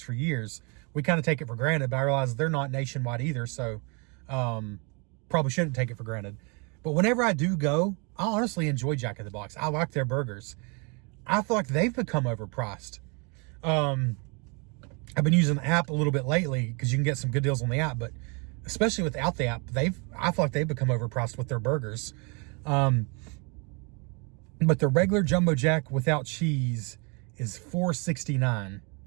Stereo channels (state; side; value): quieter; left; 32.7 dB